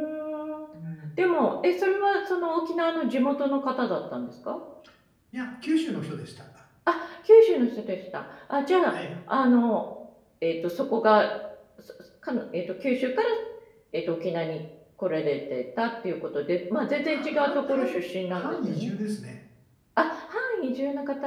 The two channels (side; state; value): both; identical; correlation 1.00